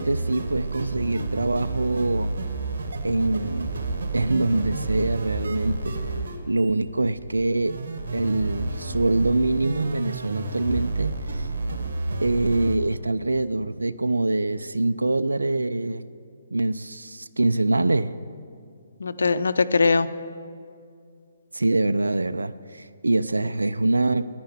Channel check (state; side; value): inverted; both; correlation -0.93